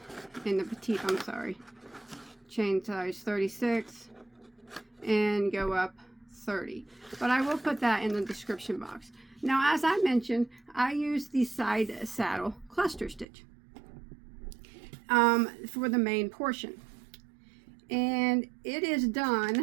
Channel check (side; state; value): left; drops out; at 13.2 s